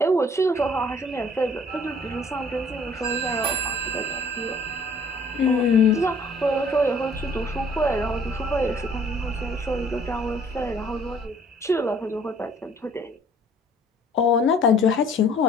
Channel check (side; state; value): both; normal; correlation 0.57